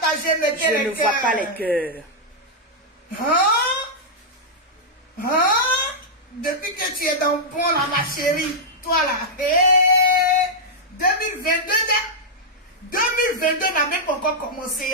mettez les cœurs. Je ne vois pas les cœurs. Depuis que tu es dans le bon là, ma chérie, toi là, 2022 n'a même pas encore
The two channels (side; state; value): both; normal; correlation -0.07